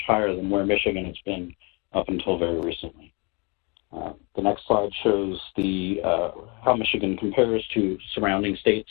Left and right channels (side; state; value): right; quieter; 31.0 dB